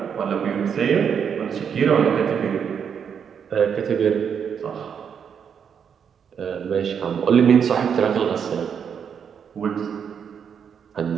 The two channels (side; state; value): left; quieter; 7.4 dB